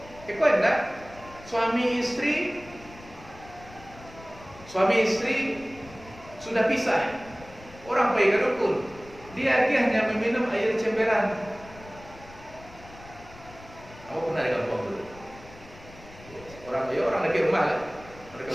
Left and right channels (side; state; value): left; noise; rumble, 20 dB below the sound